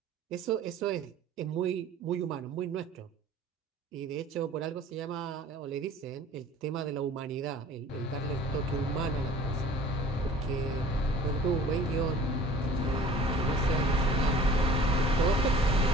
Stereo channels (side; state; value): both; normal; correlation 0.47